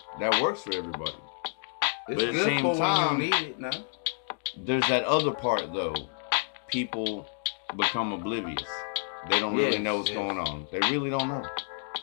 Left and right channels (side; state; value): right; silent; 58 dB below the other